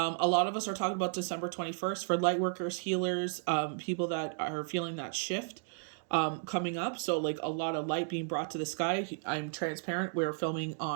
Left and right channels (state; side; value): silent; left; digital silence